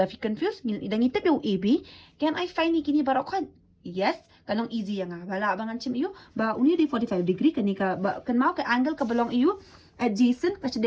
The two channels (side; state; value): both; identical; correlation 1.00